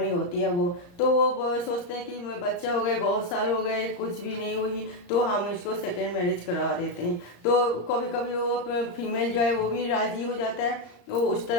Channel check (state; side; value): late; right; 34 ms